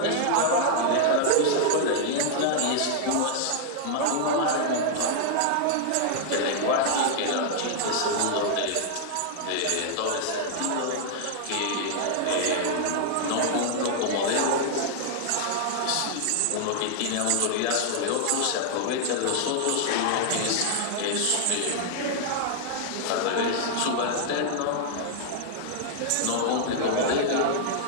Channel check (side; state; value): both; different; correlation -0.01